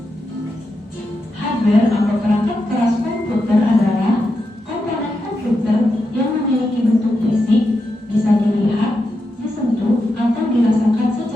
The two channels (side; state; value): both; normal; correlation 0.86